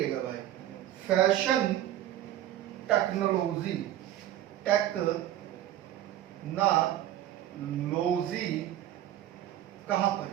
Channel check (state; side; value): quieter; left; 12.5 dB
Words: भाई, फैशन टेक्नोलॉजी, कहां पर